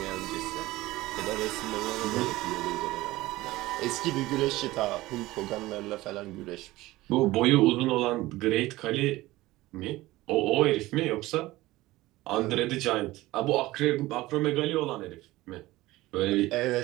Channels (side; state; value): left; quieter; 18.3 dB